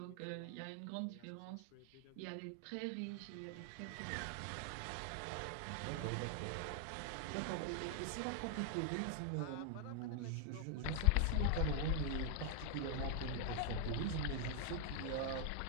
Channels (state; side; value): different; both; correlation 0.00